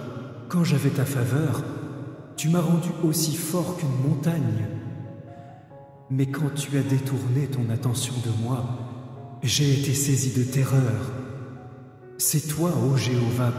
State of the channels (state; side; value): identical; both; correlation 1.00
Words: quand j'avais ta faveur, tu m'as rendu aussi fort qu'une montagne. Mais quand tu as détourné ton attention de moi, j'ai été saisi de terreur. C'est toi, ô Jéhovah,